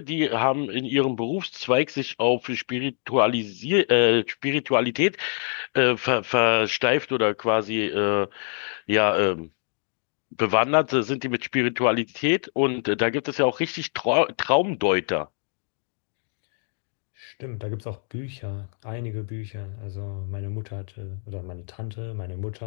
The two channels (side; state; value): right; silent; 61 dB below the other